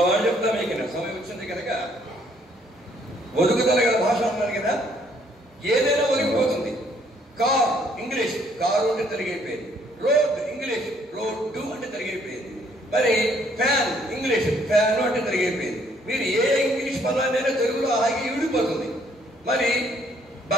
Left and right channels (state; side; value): normal; both; correlation 0.65